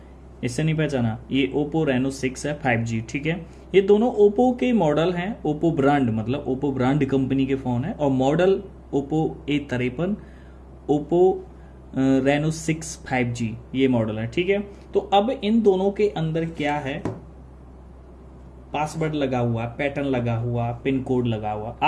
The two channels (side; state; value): both; identical; correlation 1.00